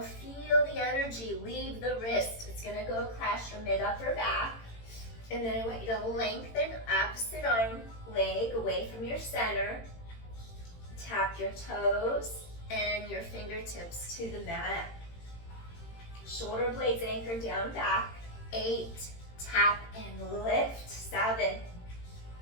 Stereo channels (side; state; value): right; late; 18 ms